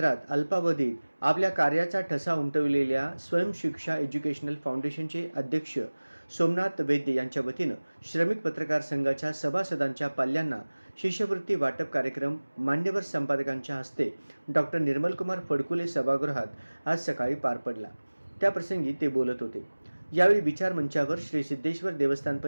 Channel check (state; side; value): inverted; both; correlation -1.00